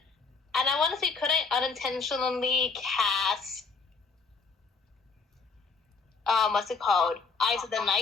and I want to see could I unintentionally cast what's it called, Eyes of the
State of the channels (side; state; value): right; quieter; 4.7 dB